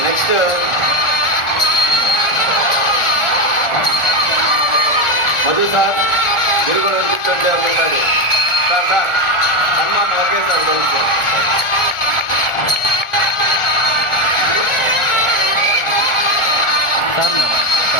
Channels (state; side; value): late; right; 1.4 ms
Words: నెక్స్ట్ మధు సార్, మీరు కూడా కూర్చోండి ఒకసారి. సార్ హనుమాన్ ఓకే సార్ కొంచెం